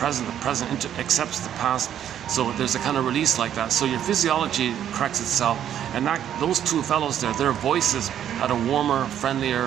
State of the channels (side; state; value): left; quieter; 10.2 dB